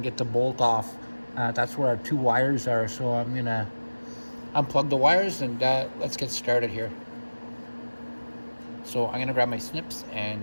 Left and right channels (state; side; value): inverted; both; correlation -1.00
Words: get the bolt off. That's where our two wires are, so I'm going to unplug the wires, and let's get started here. So I'm going to grab my snips,